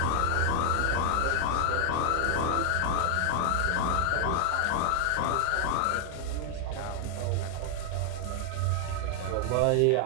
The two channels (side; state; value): both; different; correlation 0.00